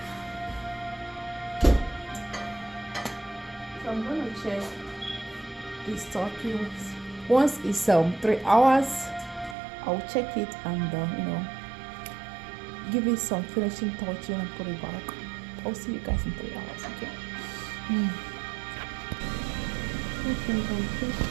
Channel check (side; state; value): left; drops out; at 9.6 s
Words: So I'm going to check this turkey. Once it's 3 hours, I'll check it and you know, give it some finishing touching and put it back. I'll see you guys in 3 hours, okay?